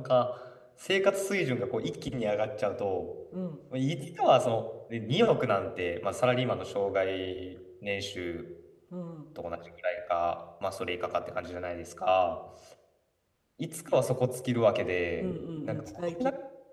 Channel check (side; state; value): both; identical; correlation 1.00